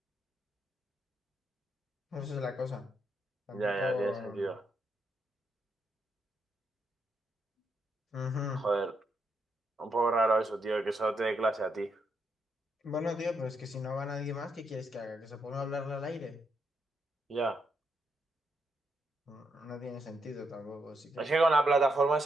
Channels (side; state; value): both; normal; correlation 0.80